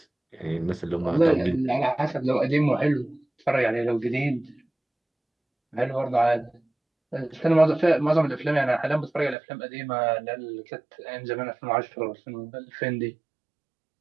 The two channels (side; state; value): left; drops out; at 9.3 s